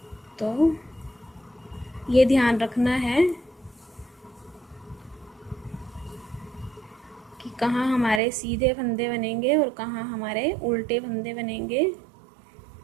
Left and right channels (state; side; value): drops out; left; at 8.2 s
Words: तो ये ध्यान रखना है कि कहाँ हमारे सीधे फंदे बनेंगे और कहाँ हमारे उल्टे फंदे बनेंगे।